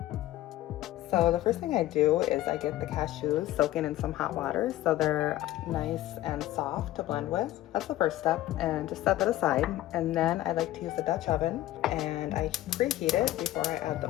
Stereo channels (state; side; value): quieter; right; 15.1 dB